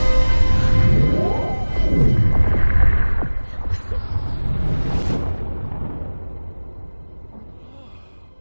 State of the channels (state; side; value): inverted; both; correlation -1.00